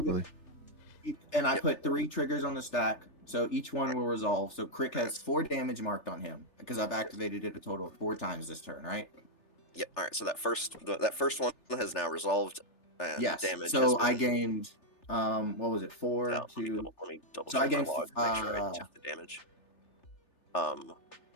And I Yep. put 3 triggers on the stack, so each one will resolve. So Crick has 4 damage marked on him because I've activated it a total of 4 times this turn, right? Yep. All right. So that first one has now resolved. And Yes. Damage. So has I been- gained, what was it? 4 Let me to double So I check my gained, log to make sure I took the damage.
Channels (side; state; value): right; late; 3.4 ms